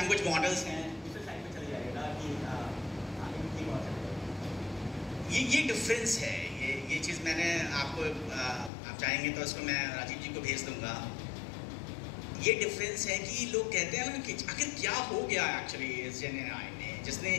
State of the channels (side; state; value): right; drops out; at 8.7 s